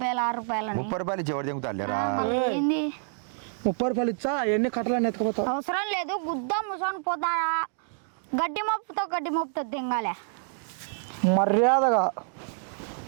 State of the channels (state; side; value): silent; left; 60 dB below the other